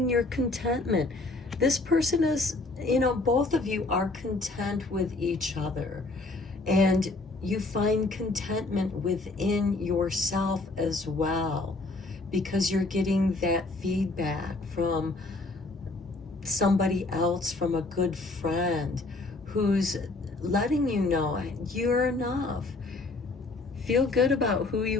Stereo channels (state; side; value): quieter; right; 3.3 dB